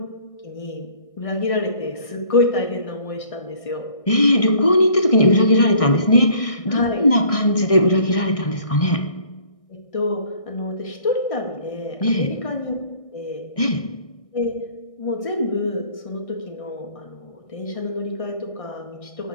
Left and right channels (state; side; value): late; right; 1.6 ms